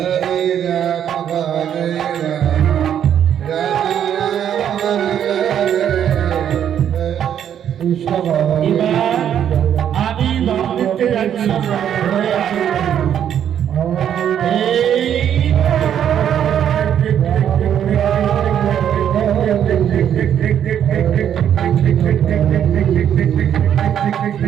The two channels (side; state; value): left; quieter; 9.5 dB